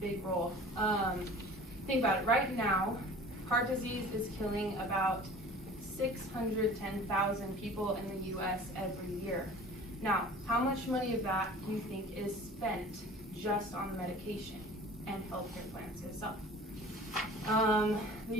big role. Think about it. Right now, heart disease is killing about 610,000 people in the U.S. every year. Now, how much money of that do you think is spent just on the medication and healthcare plans itself? The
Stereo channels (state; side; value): normal; both; correlation 0.43